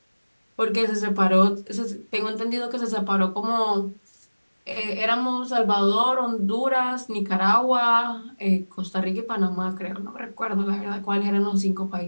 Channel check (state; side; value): inverted; both; correlation -1.00